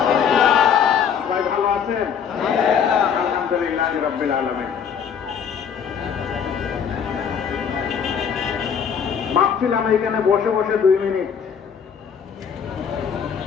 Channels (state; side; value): quieter; right; 7.4 dB